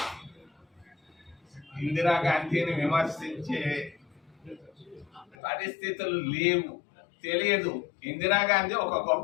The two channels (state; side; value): drops out; right; at 5.4 s